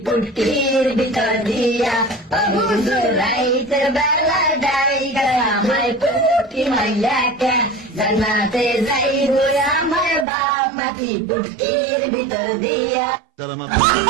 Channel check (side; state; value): left; drops out; at 10.2 s